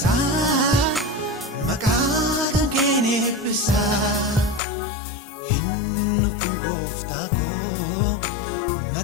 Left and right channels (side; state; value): right; drops out; at 4.6 s